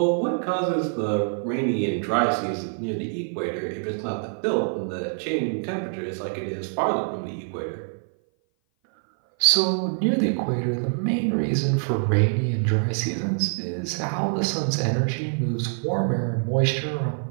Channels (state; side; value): silent; left; 57 dB below the other